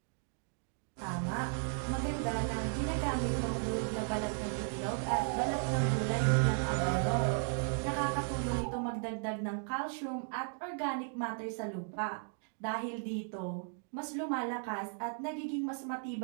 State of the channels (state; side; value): silent; left; 54 dB below the other